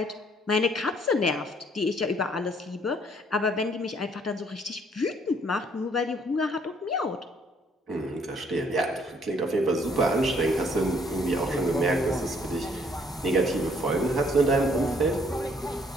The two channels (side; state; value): both; normal; correlation 0.64